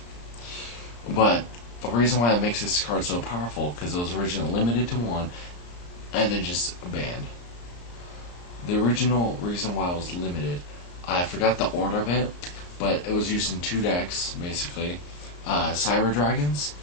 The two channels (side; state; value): right; late; 34 ms